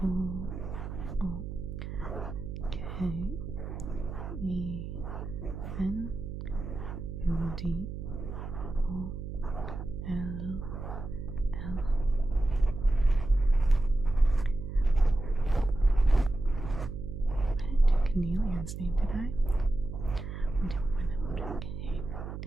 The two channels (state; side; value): noise; right; hum, 7 dB below the sound